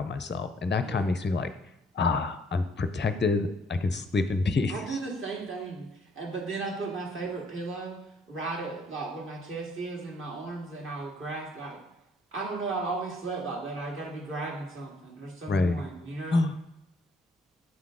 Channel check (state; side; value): normal; both; correlation 0.64